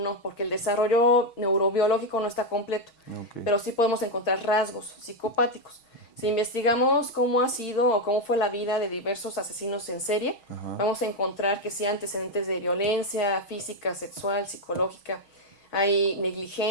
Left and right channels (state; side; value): late; right; 6.3 ms